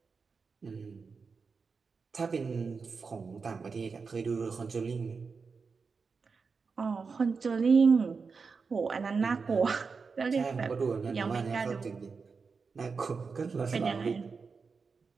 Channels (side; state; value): left; quieter; 5.0 dB